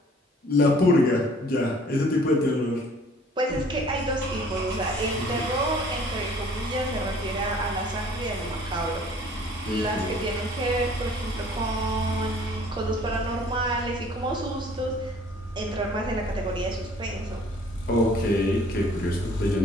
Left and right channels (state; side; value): normal; both; correlation 0.54